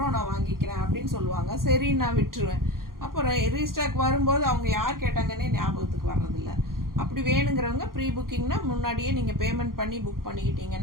நான் வாங்கிக்கிறேன் அப்படின்னு சொல்லுவாங்க. சரி, நான் விட்டுருவேன். அப்புறம் ரீஸ்டாக் வரும்போது அவங்க யார் கேட்டாங்கன்னே ஞாபகத்துக்கு வர்றதில்ல. அப்படி வேணுங்கிறவங்க ப்ரீ புக்கிங்னா முன்னாடியே நீங்கள் பேமெண்ட் பண்ணி புக்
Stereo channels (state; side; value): late; left; 0.92 ms